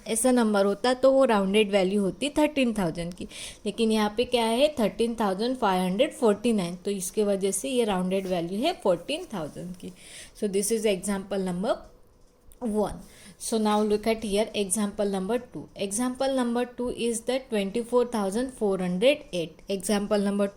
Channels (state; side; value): identical; both; correlation 1.00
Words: ऐसा नंबर होता तो वो राउंडेड वैल्यू होती 13,000 की। लेकिन यहाँ पे क्या है? 13,549, तो इसके वजह से ये राउंडेड वैल्यू है 14,000 की। So this is example number 1. So now look at here example number 2. Example number 2 is the 24,408. Example number